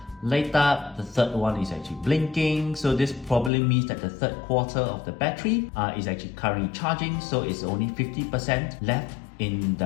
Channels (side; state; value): right; drops out; at 3.5 s